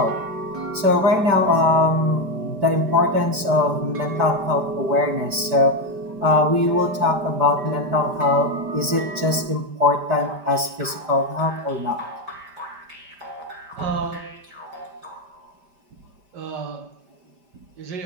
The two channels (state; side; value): late; left; 5.1 ms